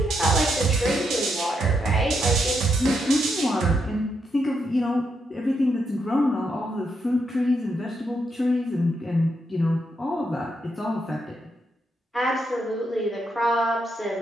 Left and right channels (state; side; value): normal; both; correlation 0.80